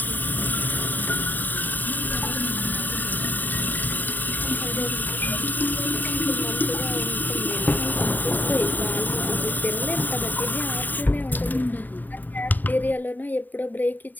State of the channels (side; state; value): right; late; 0.087 ms